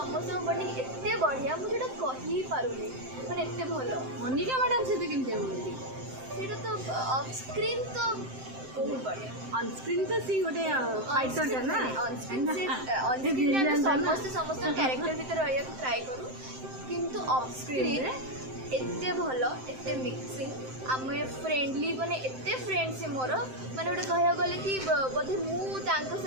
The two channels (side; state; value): left; late; 7.7 ms